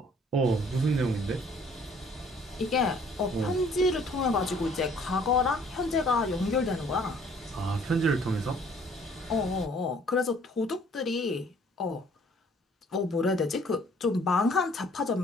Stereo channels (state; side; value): normal; both; correlation 0.58